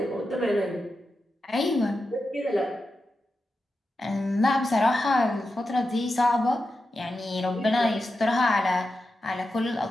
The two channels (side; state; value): both; normal; correlation 0.90